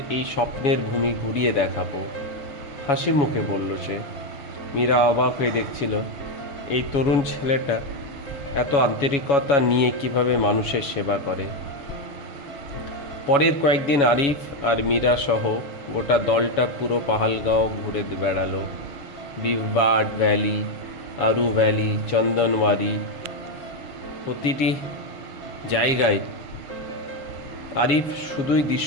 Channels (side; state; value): right; late; 6.7 ms